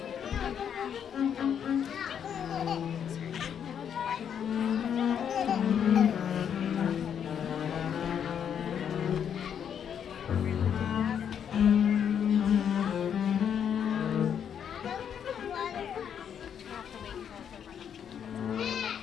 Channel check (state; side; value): quieter; right; 8.3 dB